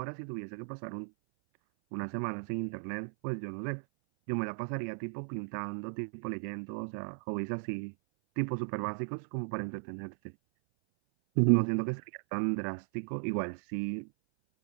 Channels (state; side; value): silent; left; 54 dB below the other